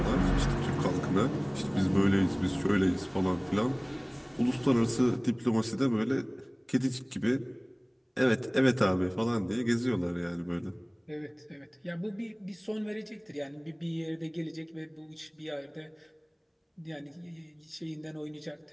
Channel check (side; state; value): both; identical; correlation 1.00